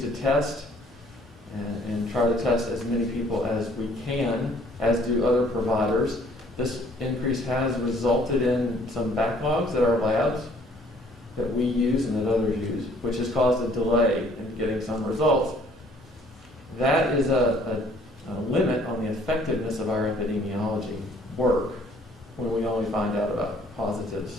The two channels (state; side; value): normal; both; correlation 0.59